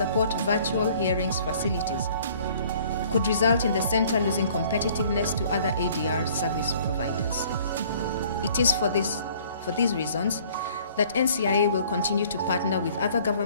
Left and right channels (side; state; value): both; inverted; correlation -0.56